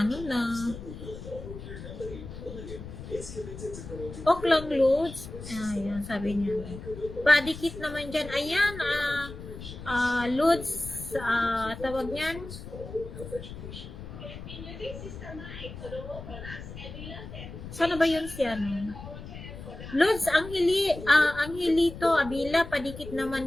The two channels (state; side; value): noise; left; rumble, 12 dB below the sound